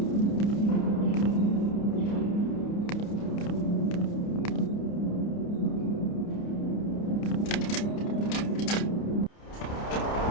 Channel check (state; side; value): late; right; 29 ms